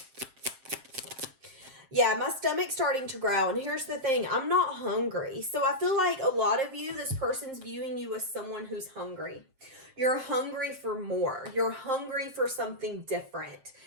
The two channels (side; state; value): left; late; 7.5 ms